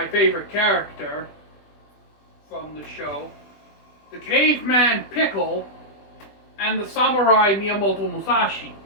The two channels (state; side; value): late; right; 20 ms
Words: favorite character from the show, the caveman Pickle, and the samurai Miyamoto Musashi.